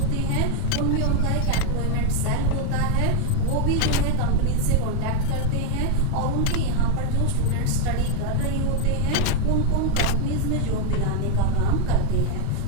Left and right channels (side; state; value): both; different; correlation 0.01